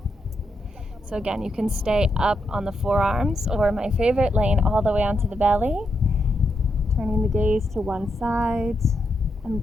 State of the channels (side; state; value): both; normal; correlation 0.82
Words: So again, you can stay up on the forearms, or my favorite, laying all the way onto the belly. Turning the gaze to one side